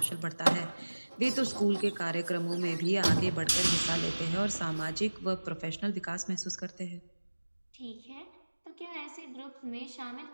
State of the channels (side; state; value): both; inverted; correlation -1.00